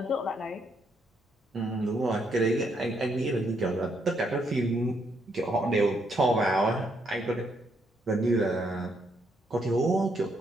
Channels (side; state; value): both; normal; correlation 0.75